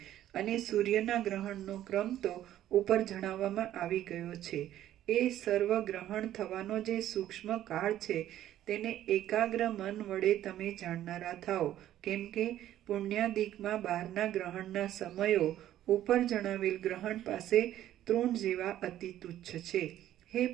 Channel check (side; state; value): left; quieter; 12.5 dB